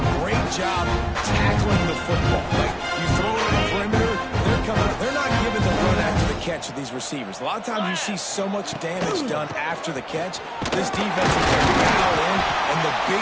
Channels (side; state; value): both; identical; correlation 1.00